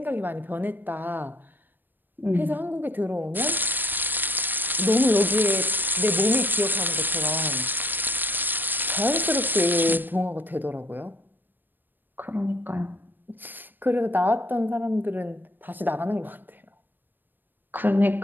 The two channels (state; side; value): late; left; 0.092 ms